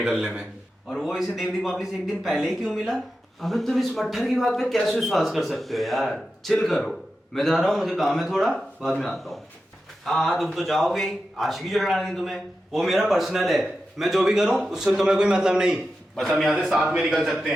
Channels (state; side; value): normal; both; correlation 0.91